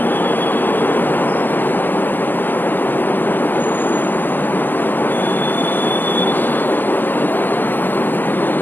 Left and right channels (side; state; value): right; late; 0.088 ms